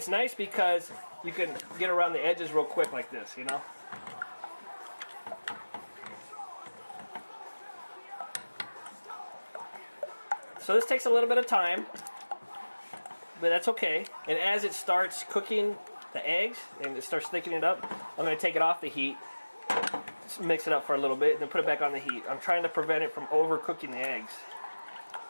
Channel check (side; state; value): both; inverted; correlation -1.00